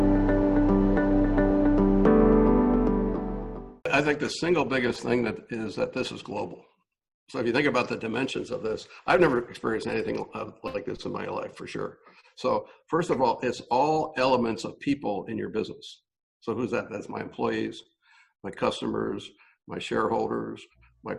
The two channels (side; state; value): both; identical; correlation 1.00